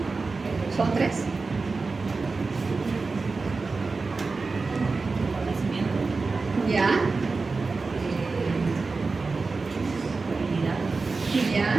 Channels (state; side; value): quieter; left; 4.1 dB